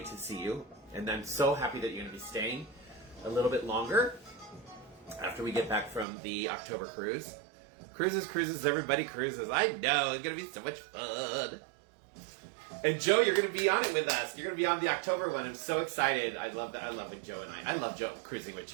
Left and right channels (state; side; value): drops out; left; at 6.1 s